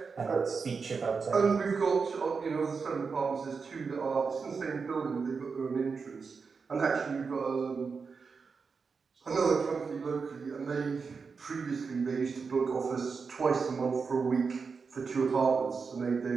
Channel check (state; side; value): quieter; left; 5.2 dB